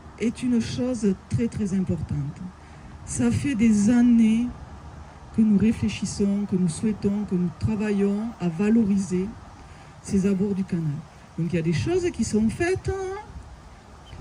est une chose très très importante. Ça fait des années que nous réfléchissons, que nous souhaitons, que nous travaillons à valoriser ces abords du canal. Donc il y a des choses qui sont faites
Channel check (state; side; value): identical; both; correlation 1.00